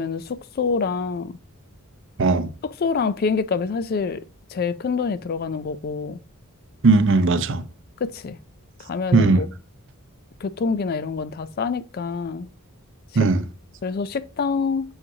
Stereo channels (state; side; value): normal; both; correlation 0.36